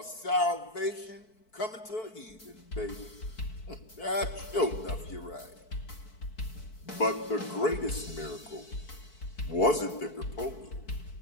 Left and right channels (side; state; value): right; late; 4.6 ms